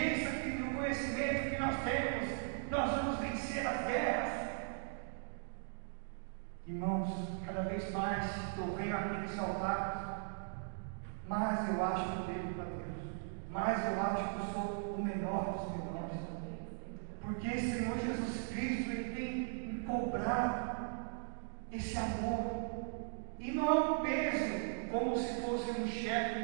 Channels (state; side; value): silent; left; digital silence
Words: e o conhecimento que nós temos, nós vamos vencer as guerras. Irmãos, cada vez mais eu venho aqui nesse altar, mais eu acho que eu devo para Deus, mais eu acho que eu sou o menor dos menores, porque o Senhor Jesus Cristo, Ele tem me cobrado esse amor, e não é um peso, como se fosse um chefe